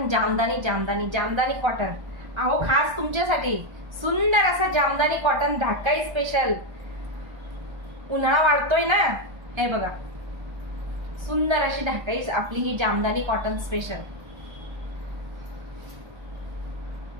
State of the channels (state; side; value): late; left; 1.3 ms